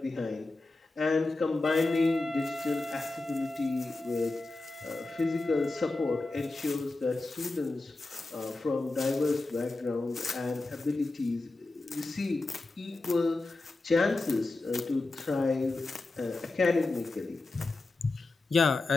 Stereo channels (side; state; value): right; quieter; 3.2 dB